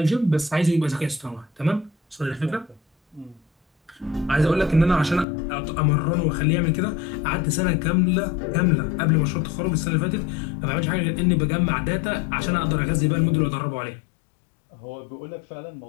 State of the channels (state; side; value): drops out; right; at 5.2 s